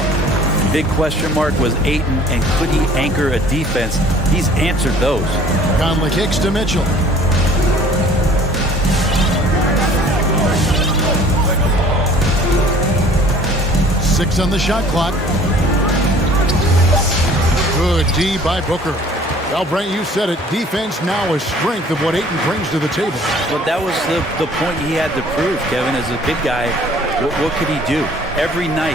Big question mark was Ayton, and could he anchor a defense? He's answered those. Conley kicks to Mitchell. Six on the shot clock. Good D by Booker. Well, Brent, you said it. Defense now a strength of what Ayton brings to the table. But that was the point he had to prove, Kevin. As a big guy, what could he do? Every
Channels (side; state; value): both; normal; correlation 0.52